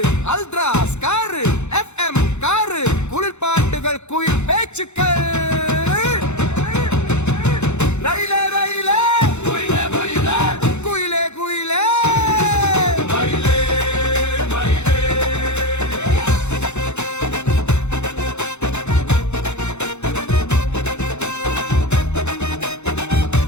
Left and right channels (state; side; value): late; right; 0.82 ms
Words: அல்ட்ராஸ் காரு FM காரு குளிர் பாட்டுகள் குயில் பேச்சுக்கள் ரயிலே ரயிலே குயிலே குயிலே குயிலே